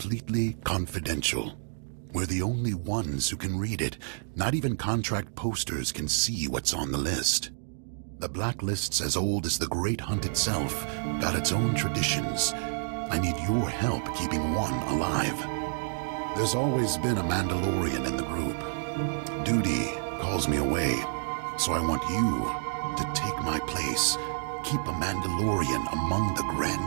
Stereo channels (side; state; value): left; silent; digital silence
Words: confidential. We're the only ones who can read it. Not even contract posters can see what's on the list. The Blacklist's as old as the Great Hunt itself, got its own traditions. I need your help keeping one alive. There's always been a Mandalorian in the group. Duty calls me away, so I want you to take my place. Keep a Mandalorian among the